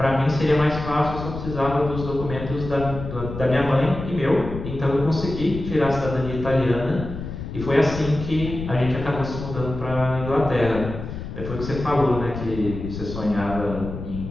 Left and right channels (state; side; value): noise; left; rumble, 8 dB below the sound